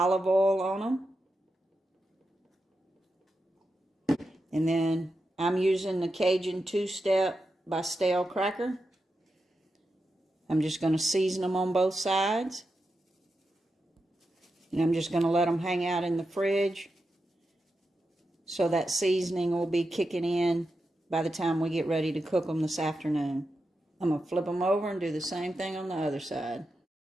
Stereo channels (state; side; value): normal; both; correlation 0.89